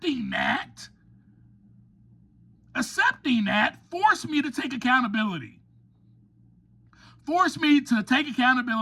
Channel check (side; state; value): both; identical; correlation 1.00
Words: that forced me to take accountability. Forced me to take